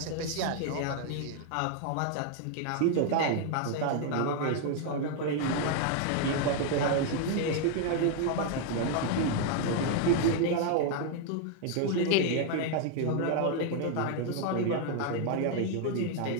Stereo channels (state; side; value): different; both; correlation 0.00